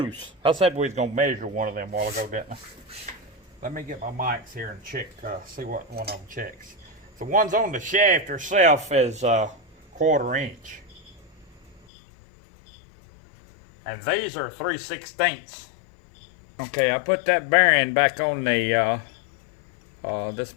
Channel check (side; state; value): right; drops out; at 11.8 s